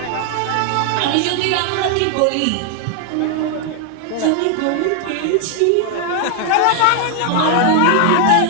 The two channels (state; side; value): different; both; correlation 0.00